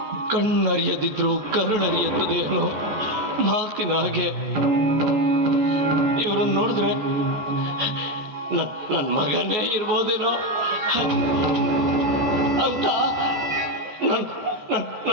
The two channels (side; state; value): left; late; 14 ms